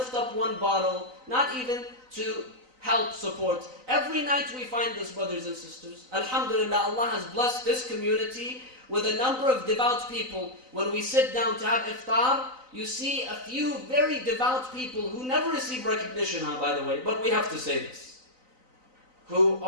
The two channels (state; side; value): late; left; 3.9 ms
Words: up one bottle, not even to help support. Every night we find this, brothers and sisters. Alhamdulillah, Allah has blessed this community with a number of devout people. When we sit down to have iftar, you see a few very devout people who never receive recognition, by the way, but we have to say this, who